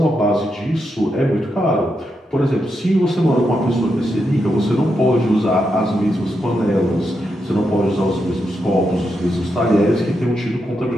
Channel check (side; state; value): both; normal; correlation 0.84